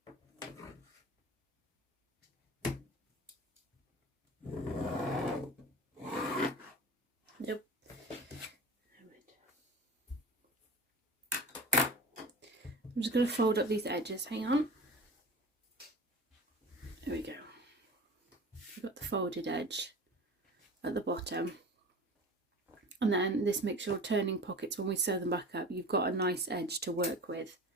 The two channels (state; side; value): normal; both; correlation 0.37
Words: Nope. I'm just going to fold up these edges. Hang on. There we go. We've got the folded edge at the bottom. And then this makes your turning pockets, when we sew them back up, you've got a nice edge to work with.